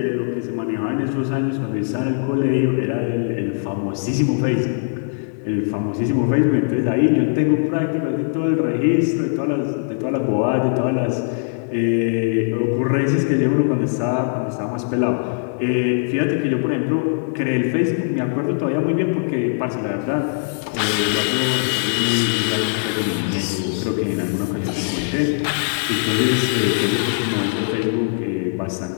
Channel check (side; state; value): right; silent; 57 dB below the other